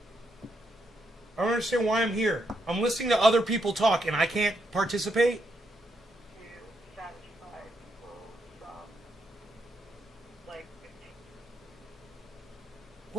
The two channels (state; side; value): normal; both; correlation 0.79